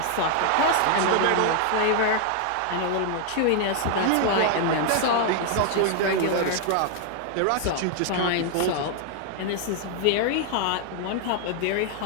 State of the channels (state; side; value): different; both; correlation 0.00